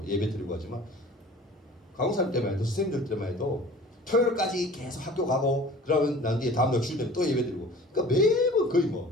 예배 드리고 하지만 강사님 때만 해도 선생님들 때만 해도 토요일까지 계속 학교 가고 그러면 난 뒤에 다음날 주일 되면 또 예배 드리고, 그러니까 매번 거의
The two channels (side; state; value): both; normal; correlation 0.44